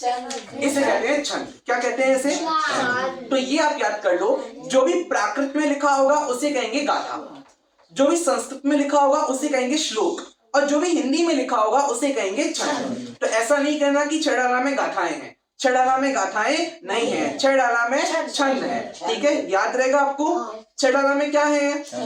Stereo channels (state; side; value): identical; both; correlation 1.00